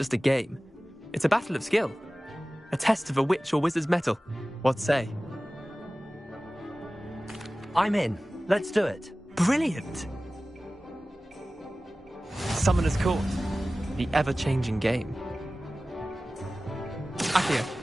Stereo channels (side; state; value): both; normal; correlation 0.97